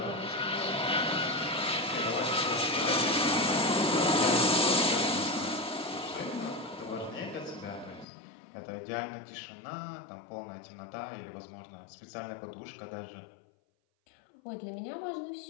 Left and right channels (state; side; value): drops out; right; at 8.1 s